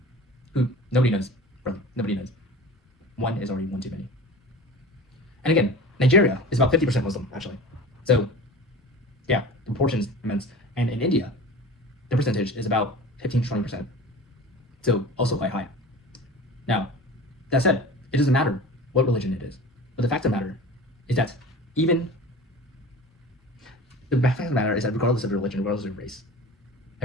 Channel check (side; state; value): both; normal; correlation 0.37